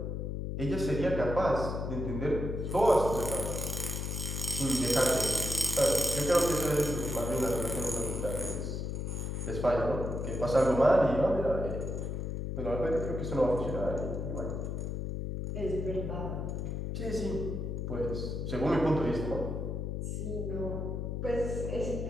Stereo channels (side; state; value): left; noise; hum, 3 dB below the sound